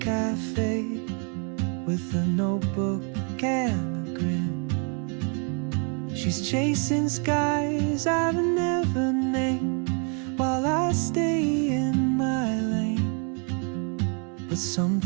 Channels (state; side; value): quieter; left; 39.3 dB